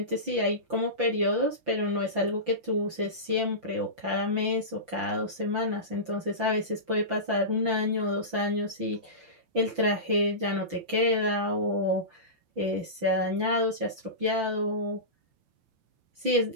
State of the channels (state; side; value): late; left; 5.9 ms